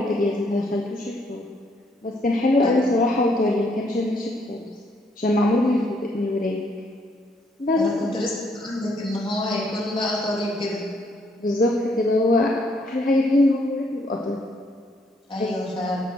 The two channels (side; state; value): both; normal; correlation 0.70